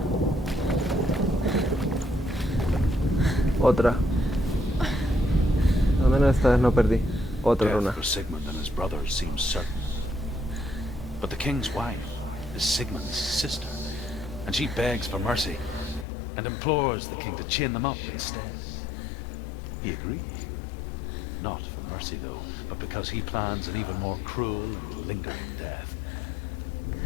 Otra. Al menos esta vez no perdí. Otra runa. Death for Sigmund and his brothers seems certain. But the king's wife is Sigmund's sister, and she begs for mercy and implores the king to chain them up instead. He agrees. Not for mercy, though, but because he plans an even more cruel and lingering death.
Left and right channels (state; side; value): drops out; right; at 16.1 s